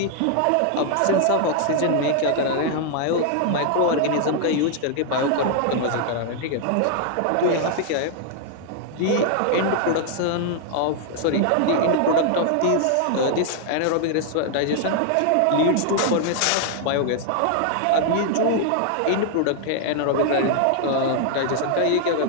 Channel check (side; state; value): both; different; correlation 0.00